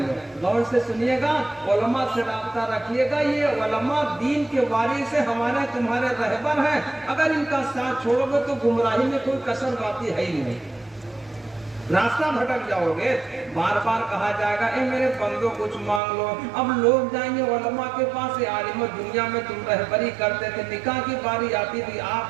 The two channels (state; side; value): drops out; left; at 16.0 s